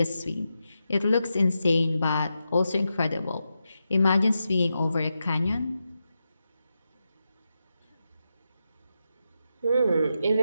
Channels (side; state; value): both; inverted; correlation -0.88